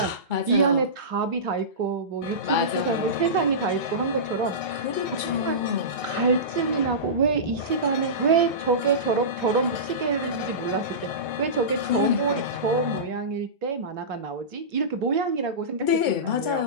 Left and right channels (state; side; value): late; left; 2.2 ms